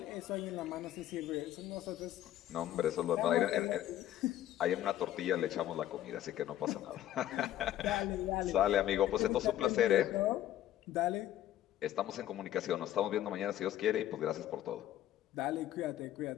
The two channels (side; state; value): right; quieter; 12.7 dB